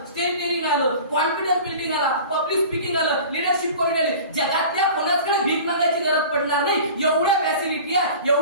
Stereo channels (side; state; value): both; inverted; correlation -0.40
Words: स्टेज डेअरिंग आलं, कॉन्फिडन्स बिल्डिंग आला, पब्लिक स्पीकिंग आलं, लिडरशिप क्वालिटी आली, जगातल्या कोणाकडे भीक मागायची गरज पडणार नाही. एवढ्या फॅसिलिटी आहे,